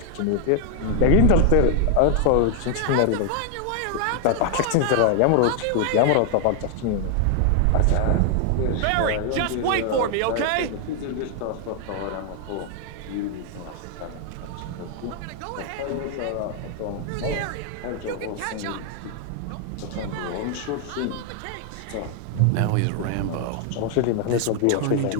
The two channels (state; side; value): different; both; correlation 0.00